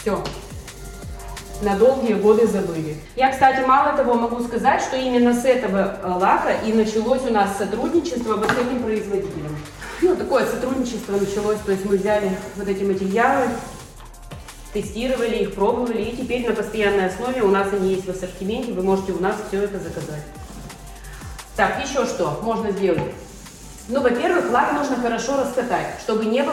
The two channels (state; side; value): identical; both; correlation 1.00